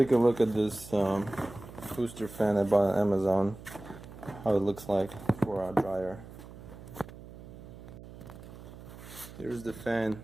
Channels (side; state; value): right; noise; hum, 16 dB below the sound